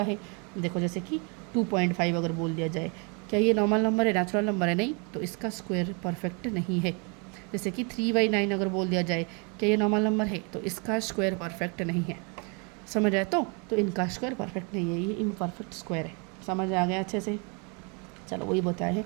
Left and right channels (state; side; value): quieter; left; 33.7 dB